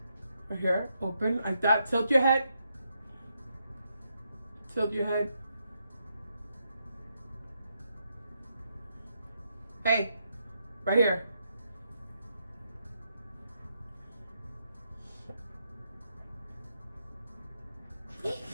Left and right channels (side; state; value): both; inverted; correlation -0.80